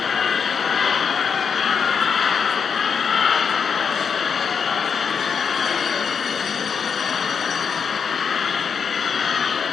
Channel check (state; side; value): quieter; right; 6.4 dB